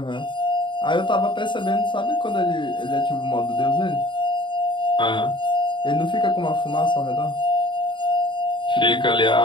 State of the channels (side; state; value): right; late; 0.23 ms